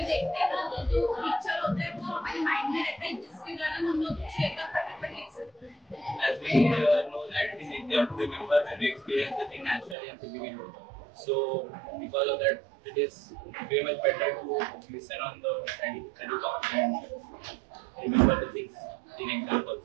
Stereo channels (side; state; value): left; drops out; at 10.0 s